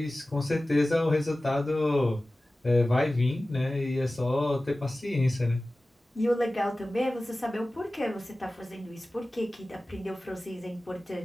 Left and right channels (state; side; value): normal; both; correlation 0.96